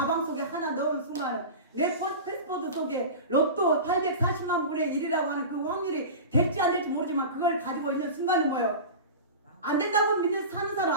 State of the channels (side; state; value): both; inverted; correlation -0.30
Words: 속에 하나 넣은 순간은, 내 패스포드 속에 로또 840만 분의 1이라고 하는 그 확률이 될지 안 될지 모르지만 그걸 가지고 있는 순간은 뭐예요? 안 된다고 믿는 사는 사람